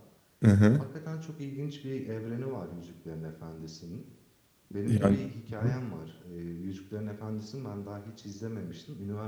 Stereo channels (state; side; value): identical; both; correlation 1.00